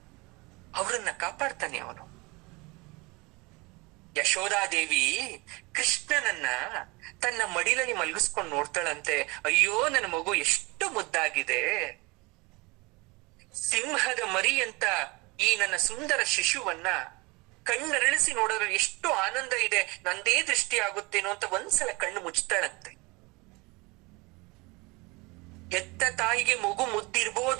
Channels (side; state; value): left; quieter; 25.7 dB